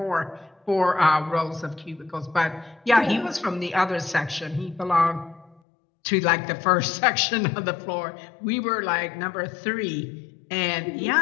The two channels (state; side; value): drops out; right; at 5.6 s